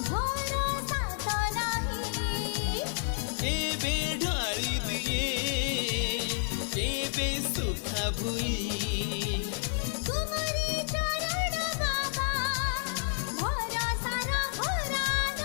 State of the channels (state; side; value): silent; right; 58 dB below the other